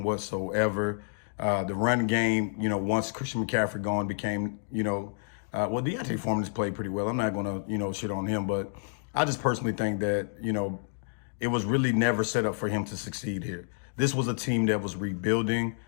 whatsoever. The run game, once Christian McCaffrey gone became, Deontay Foreman has played pretty well. I'm not going to, shit on him, but I just personally think that, it was really never set up for him to succeed here. This was a team that was rebuilding.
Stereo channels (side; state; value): right; silent; digital silence